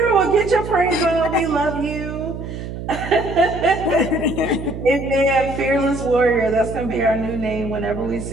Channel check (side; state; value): right; noise; hum, 8 dB below the sound